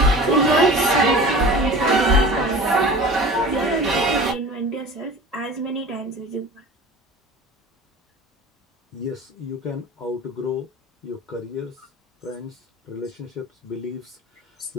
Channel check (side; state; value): both; normal; correlation 0.38